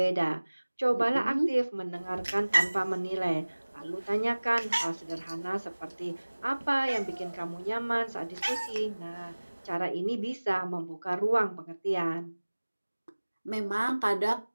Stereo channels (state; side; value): inverted; both; correlation -1.00